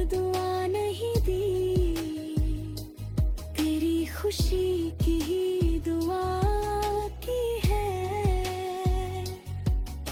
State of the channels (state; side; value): identical; both; correlation 1.00